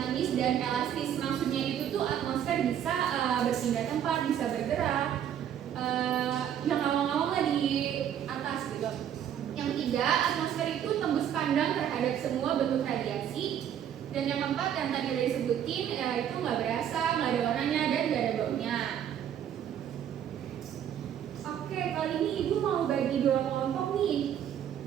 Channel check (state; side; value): quieter; left; 9.7 dB